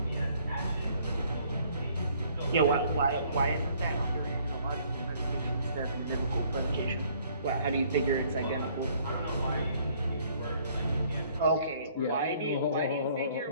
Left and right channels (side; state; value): both; inverted; correlation -0.62